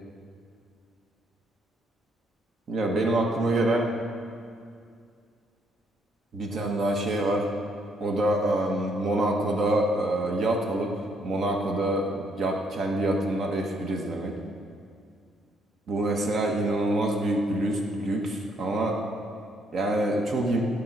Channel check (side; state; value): both; normal; correlation 0.71